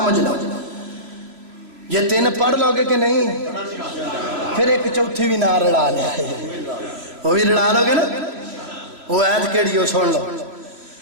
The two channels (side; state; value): left; late; 2.9 ms